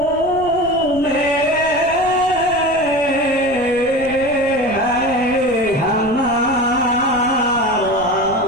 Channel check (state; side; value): noise; right; rumble, 16 dB below the sound